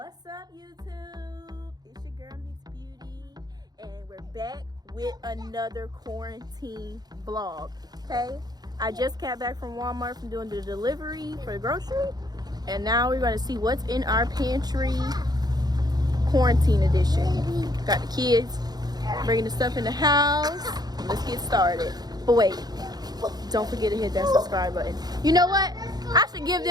up, YouTube? It's your girl Miss Beauty, and we're back with another quarantine vlog. Okay, I just got back from Walmart from doing the delivery for the grocery, and now we're going to see what's in our pantry. Quarantine edition. Got the kids bringing the stuff in the house. Let's get started. But wait, don't forget to hit that subscribe button. You know what? I should give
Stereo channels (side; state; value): left; late; 0.19 ms